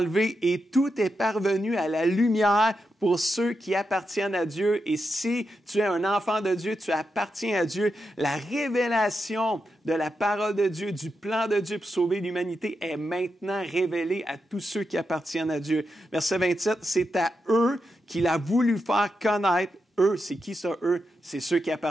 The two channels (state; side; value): normal; both; correlation 0.86